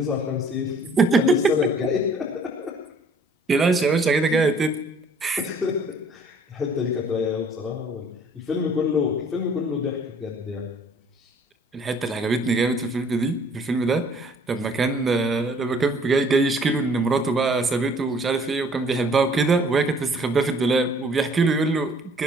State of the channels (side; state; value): both; normal; correlation 0.57